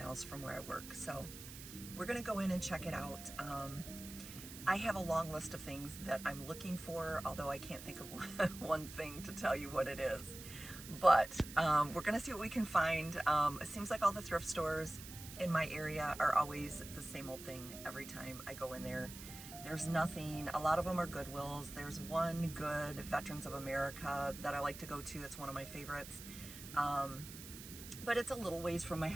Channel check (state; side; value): noise; right; hiss, 13 dB below the sound